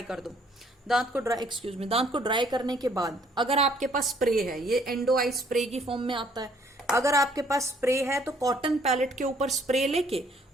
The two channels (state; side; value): normal; both; correlation 0.63